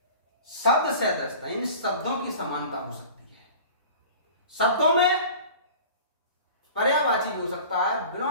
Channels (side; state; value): both; inverted; correlation -0.41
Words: शब्द सदृशता, इन शब्दों की समानता हो सकती है। शब्दों में पर्यायवाची भी हो सकता है,